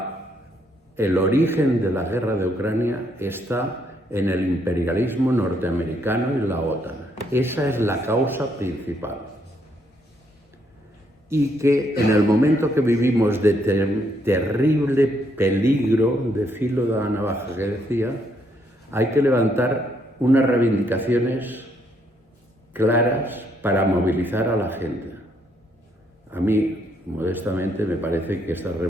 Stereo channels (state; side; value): normal; both; correlation 0.73